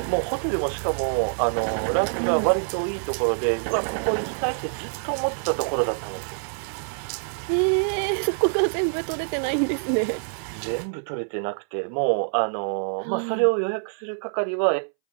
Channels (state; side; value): silent; left; 62 dB below the other